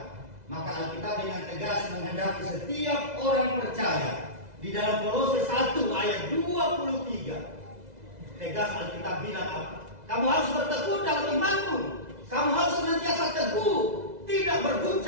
maka Alkitab dengan tegas menghendaki setiap orang percaya. Di dalam Kolose 1 ayat 23 tegas Alkitab bilang apa? Kamu harus bertekun dalam imanmu. Kamu harus senantiasa teguh, tidak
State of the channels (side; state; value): left; late; 2.0 ms